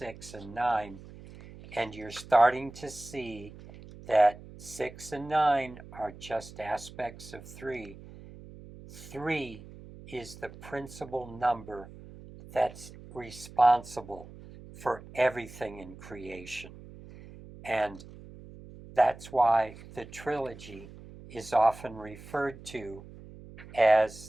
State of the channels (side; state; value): right; noise; hum, 17 dB below the sound